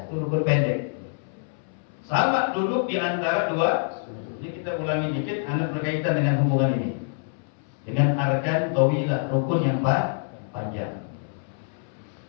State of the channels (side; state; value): right; silent; 61 dB below the other